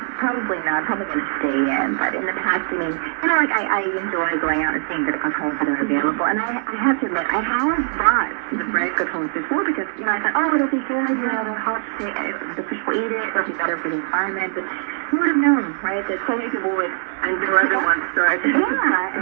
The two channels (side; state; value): left; silent; digital silence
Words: not. Probably going to stay in. But in the past, I enjoy going out and seeing the Krathongs that are available. And I have to admit, I have bought the bread Krathongs before because, I thought, it'll be good. The hot the fish will eat it. It'll be better for the environment. But who would have known, right? That so many people would and do other ones start. Yeah, and